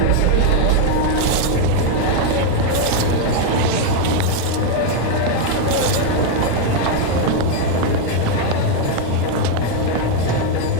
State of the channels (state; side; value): different; both; correlation 0.00